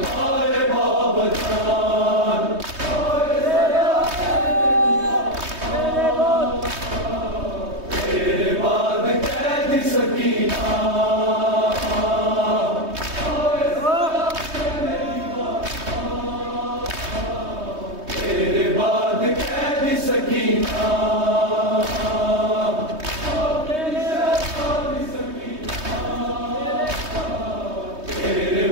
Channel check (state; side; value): late; left; 3.2 ms